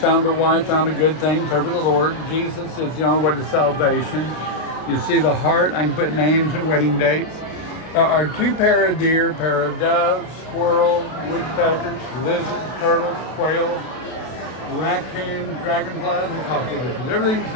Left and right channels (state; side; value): late; right; 32 ms